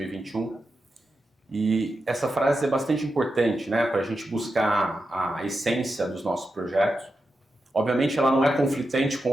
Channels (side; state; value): both; normal; correlation 0.89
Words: E essa frase é bastante importante, né? Para a gente buscar a essência dos nossos projetos. Obviamente ela não é conflitante com